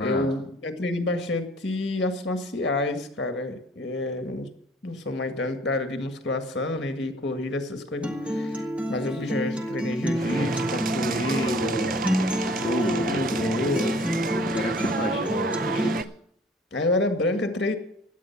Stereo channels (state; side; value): normal; both; correlation 0.53